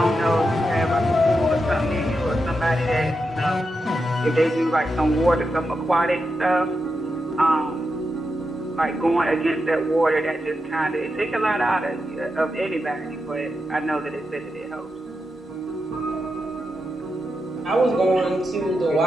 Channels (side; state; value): both; normal; correlation 0.87